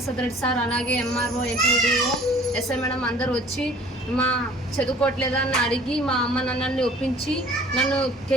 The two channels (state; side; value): normal; both; correlation 0.51